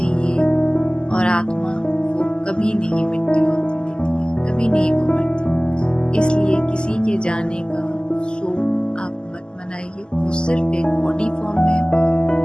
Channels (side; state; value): right; late; 0.047 ms